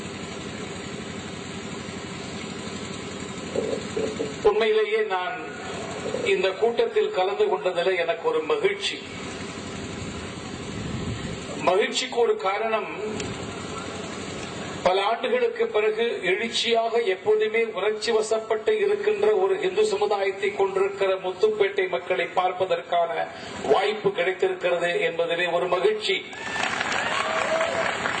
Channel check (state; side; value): identical; both; correlation 1.00